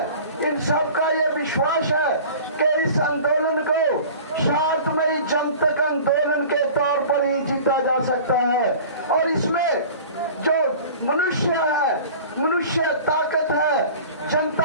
इन सब का ये विश्वास है कि इस आंदोलन को शांतमयी जनतक आंदोलन के तौर पर ही जीता जा सकता है। और इसमें जो मनुष्य है, मनुष्य ताकत है,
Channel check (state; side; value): inverted; both; correlation -0.41